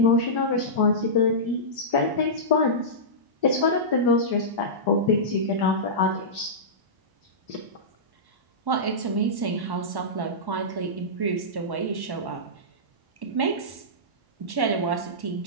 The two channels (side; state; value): left; late; 1.1 ms